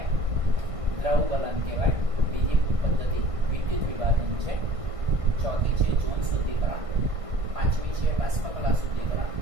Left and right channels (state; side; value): late; left; 1.6 ms